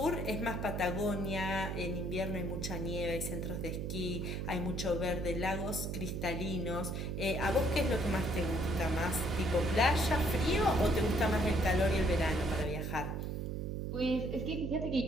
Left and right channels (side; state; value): right; noise; hum, 3 dB below the sound